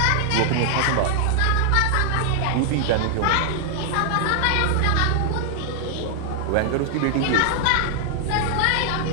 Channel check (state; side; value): different; both; correlation 0.00